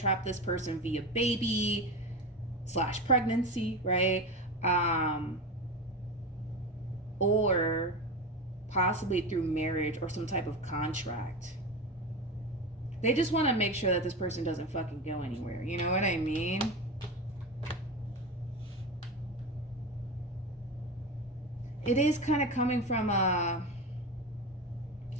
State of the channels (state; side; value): normal; both; correlation 0.22